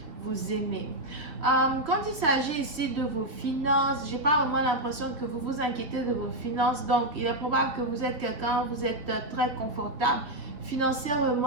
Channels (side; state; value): left; late; 3.3 ms